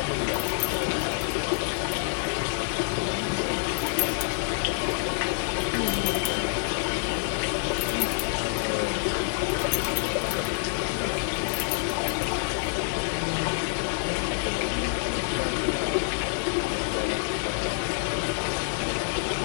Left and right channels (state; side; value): silent; right; 56 dB below the other